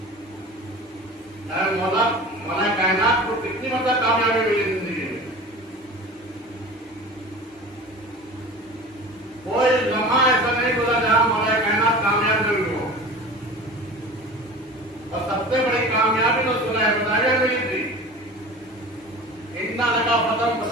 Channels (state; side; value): normal; both; correlation 0.37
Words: मौला मौला कायनात को कितनी मतलब कामयाबी मिली जिंदगी में? कोई लम्हा ऐसा नहीं बोला जहां मौला कायनात कामयाब नहीं हो। और सबसे बड़ी कामयाबी तो सुना बताया मिली थी, इतना लगा फतम